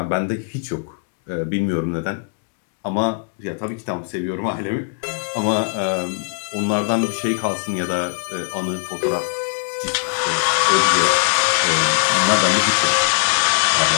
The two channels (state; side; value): silent; right; digital silence